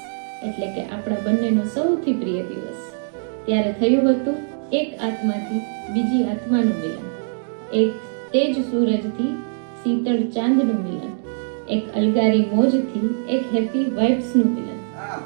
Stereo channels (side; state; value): left; silent; digital silence